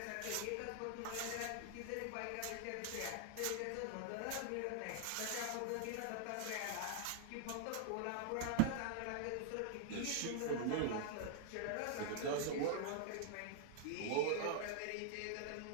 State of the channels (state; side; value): different; both; correlation 0.00